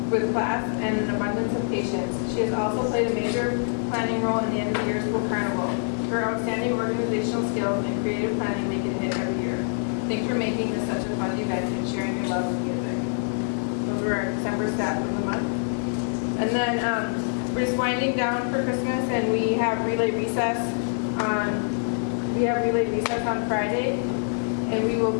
with class and an abundance of patience. She has also played a major planning role in the end of the year school carnival. Her outstanding organizational skills and creative planning make it a hit every year. Thanks for making this such a fun event and sharing your love of music." Those were our December staff of the month. And then we're just winding down for Christmas, and we have relay recess on Friday, and we will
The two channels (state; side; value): silent; right; 61 dB below the other